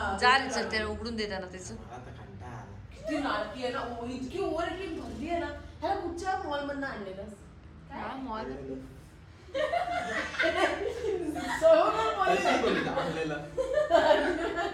जा रे चल त्याला उघडून देताना त्याचं. मला तर कंटाळा आला. किती नाटकी आहे ना. इतकी ओव्हर ऍक्टिंग भरली आहे ना. ह्याला कुठच्या मॉल मधनं आणलेलं हा, मॉल. कशी बोलली आपल्याला?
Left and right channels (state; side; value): identical; both; correlation 1.00